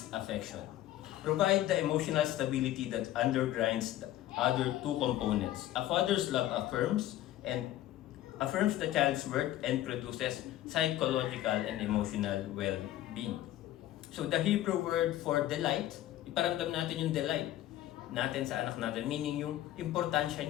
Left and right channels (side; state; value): right; quieter; 13.7 dB